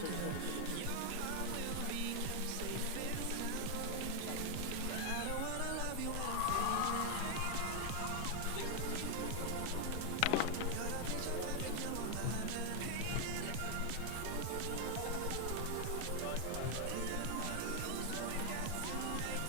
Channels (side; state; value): both; different; correlation 0.00